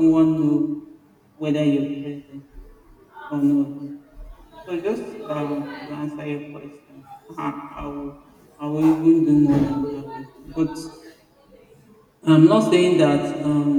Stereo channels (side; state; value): both; identical; correlation 1.00